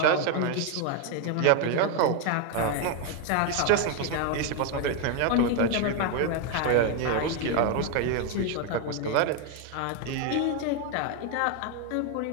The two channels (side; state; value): both; different; correlation 0.01